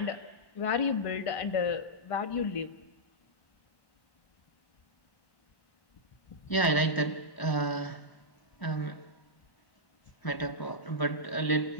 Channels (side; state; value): right; late; 1.0 ms